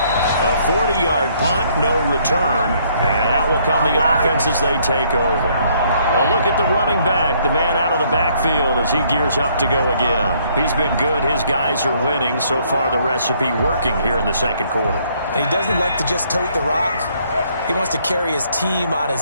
A 40-yard punt, no return, and out will come the offense as they take over. A look at the running back, the man out of the backfield as he gears up to go again. He's been good. His guys are winning. So far, the recipe working here in the second quarter. And he doesn't like to just tote the rock. He wants to carry his team on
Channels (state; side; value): inverted; both; correlation -0.66